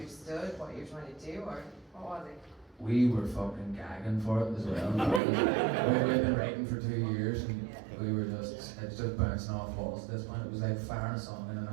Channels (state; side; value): drops out; left; at 5.2 s